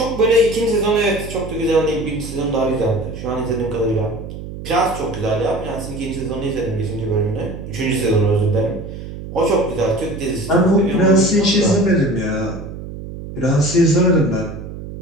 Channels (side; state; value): right; noise; hum, 10 dB below the sound